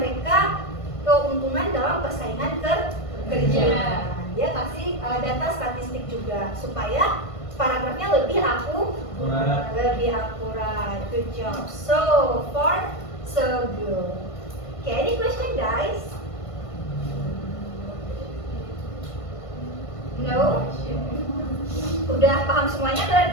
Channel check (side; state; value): right; late; 1.5 ms